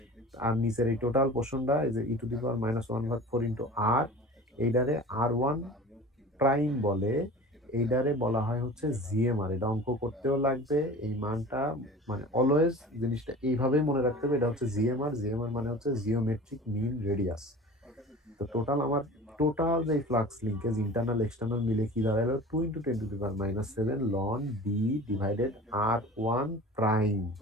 আর নিচের এই টোটাল পোর্শনটা এই যে E⁻⁴ R, এইটারে R1 প্রাইম বলে, এইটারে বলা হয় হচ্ছে জিএমআর। এটা অঙ্ক করতেও লাগবে, এই মানটা মানে অলওয়েজ জিনিসটা এইভাবেই মনে রাখতে হবে, এটা হচ্ছে জিএমআর। জিএমআর মানে হচ্ছে জিওমেট্রিক মিন রেডিয়াস। তো টোটাল যে ফ্লাক্স লিঙ্কেজ ইন্টারনাল এক্সটার্নাল মিলে কি দাঁড়ালো, 2 × 10⁻⁷ ln D/R1 প্রাইম।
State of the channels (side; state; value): both; normal; correlation 0.39